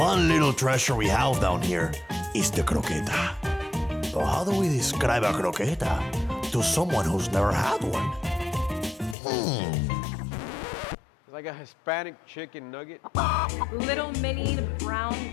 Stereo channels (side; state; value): right; drops out; at 9.2 s